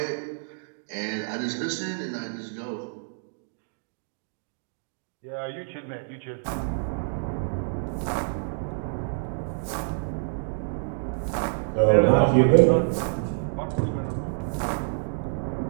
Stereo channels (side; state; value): left; silent; digital silence